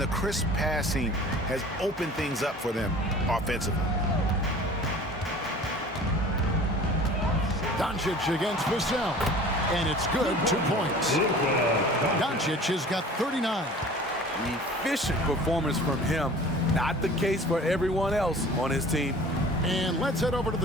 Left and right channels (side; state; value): both; normal; correlation 0.44